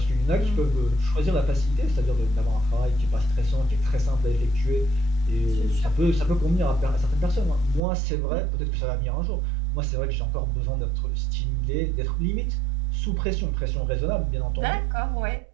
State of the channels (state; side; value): drops out; left; at 7.8 s